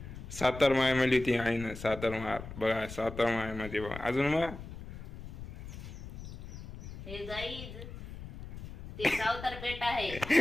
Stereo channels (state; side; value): noise; left; rumble, 11 dB below the sound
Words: सातार माय मिळली होती आहे ना सातार माय बघा सातार माय मध्ये बघा अजून मग हे गाईज ते सावतर पेट आहे